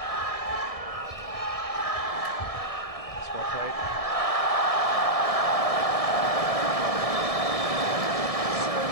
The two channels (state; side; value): late; right; 1.7 ms